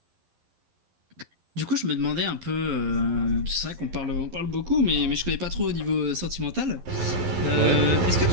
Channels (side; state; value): left; late; 11 ms